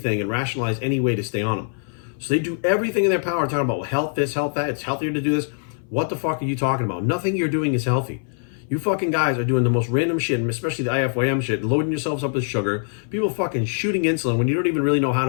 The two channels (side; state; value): right; silent; 59 dB below the other